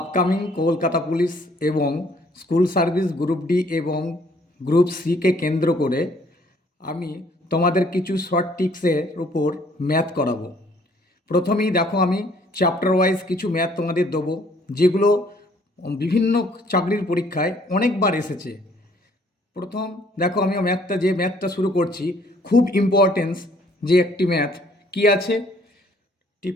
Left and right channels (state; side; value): normal; both; correlation 0.62